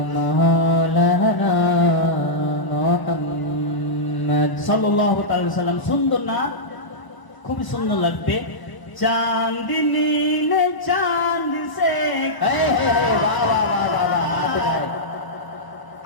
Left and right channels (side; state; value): right; late; 1.0 ms